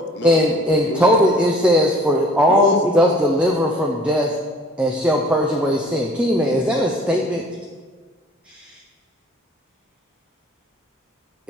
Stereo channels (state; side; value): normal; both; correlation 0.51